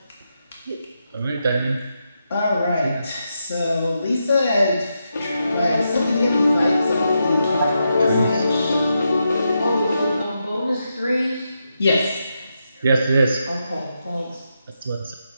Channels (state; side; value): inverted; both; correlation -0.85